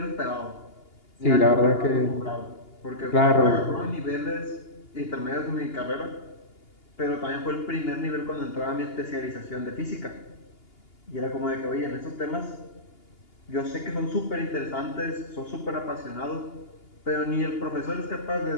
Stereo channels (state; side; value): late; right; 2.8 ms